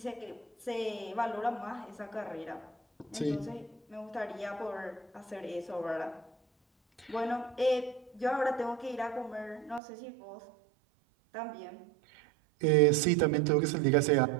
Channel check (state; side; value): drops out; left; at 9.8 s